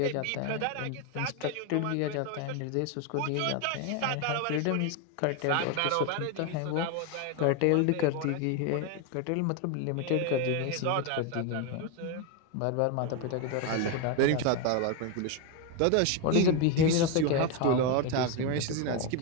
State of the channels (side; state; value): both; different; correlation 0.02